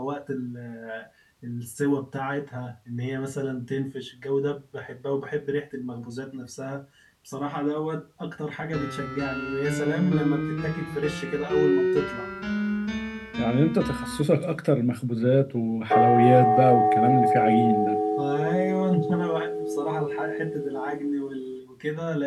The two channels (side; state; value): both; identical; correlation 1.00